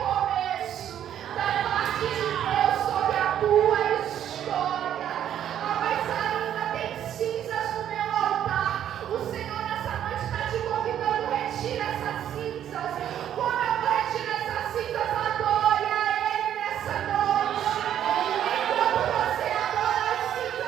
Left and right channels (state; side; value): quieter; left; 10.4 dB